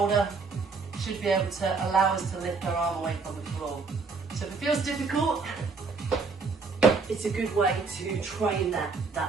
should be able to allow us to lift our arm away from the floor. So if it feels difficult, it's a good way to train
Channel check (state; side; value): quieter; left; 4.5 dB